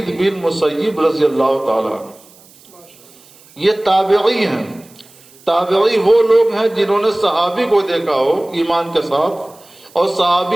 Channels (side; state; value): right; noise; hiss, 26 dB below the sound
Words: بن مسیب رضی اللہ تعالی۔ یہ تابعی ہیں۔ تابعی وہ لوگ ہیں جنہوں نے صحابی کو دیکھا ہو ایمان کے ساتھ، اور